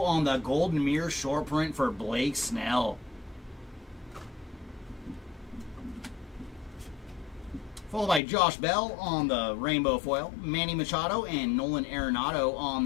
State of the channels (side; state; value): right; drops out; at 8.2 s